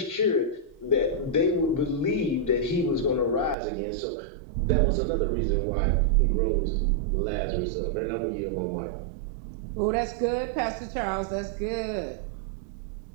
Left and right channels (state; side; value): drops out; left; at 3.6 s